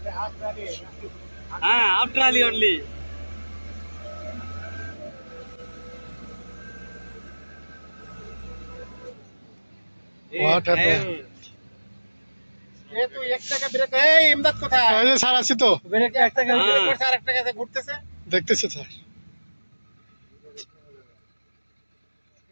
हाँ, आप ट्राली only. What happened? এ তো 1 টাকা ব্রেক। এই ইমদাদ কোথায়? এই যে স্যার আছি তো, ব্রেক 1 টাকা ব্রেক করছে আর 1 টাকা ঘুরতেছে। দেখতেছি স্যার।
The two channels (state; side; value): inverted; both; correlation -1.00